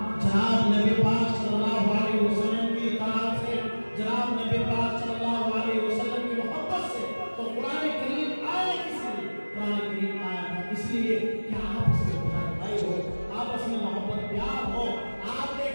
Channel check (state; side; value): inverted; both; correlation -1.00